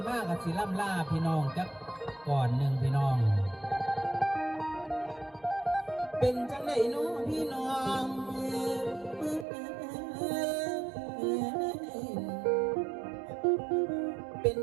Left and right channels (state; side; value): drops out; left; at 9.5 s